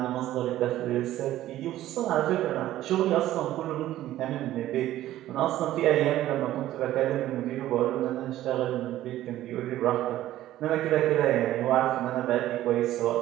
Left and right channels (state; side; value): quieter; left; 14.0 dB